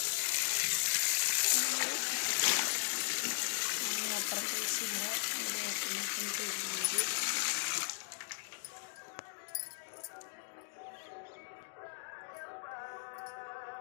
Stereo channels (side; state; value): right; silent; digital silence